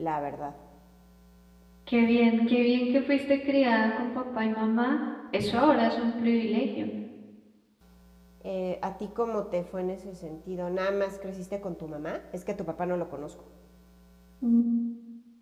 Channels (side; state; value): both; identical; correlation 1.00